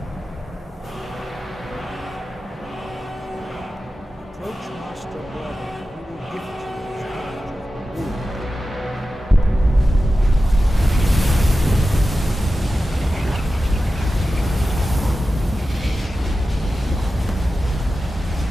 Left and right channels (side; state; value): both; normal; correlation 0.93